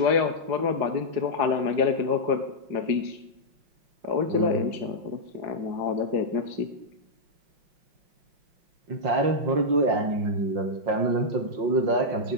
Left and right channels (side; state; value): left; late; 5.6 ms